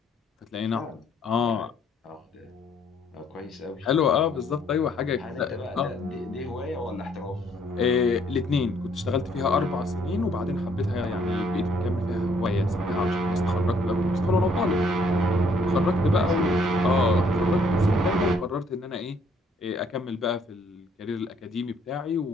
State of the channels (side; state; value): both; normal; correlation 0.65